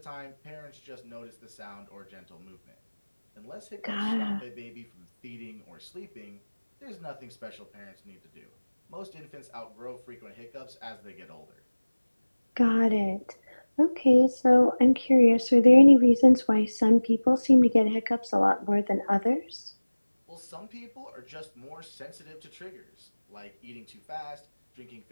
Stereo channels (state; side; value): inverted; both; correlation -1.00